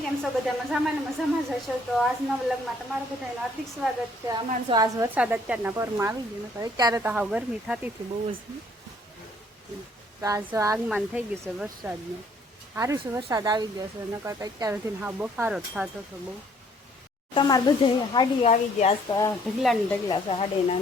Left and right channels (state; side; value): normal; both; correlation 0.62